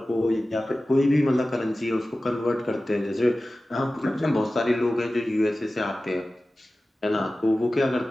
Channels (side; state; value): both; normal; correlation 0.96